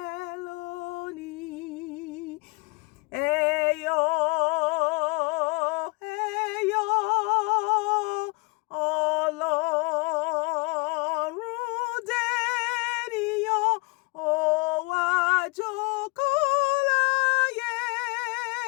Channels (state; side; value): quieter; right; 28.8 dB